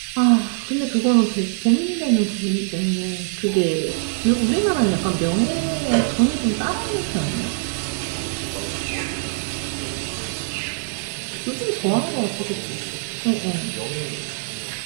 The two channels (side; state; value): left; silent; 62 dB below the other